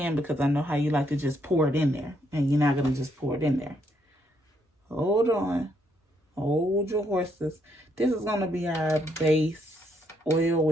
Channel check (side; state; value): both; normal; correlation 0.74